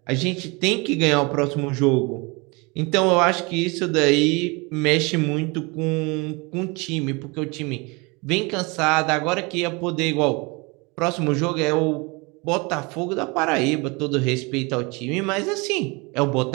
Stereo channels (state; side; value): quieter; left; 27.8 dB